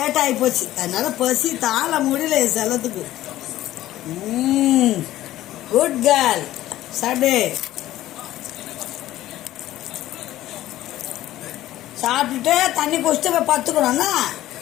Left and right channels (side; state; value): right; quieter; 14.6 dB